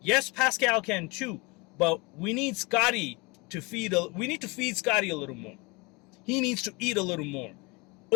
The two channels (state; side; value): quieter; right; 27.1 dB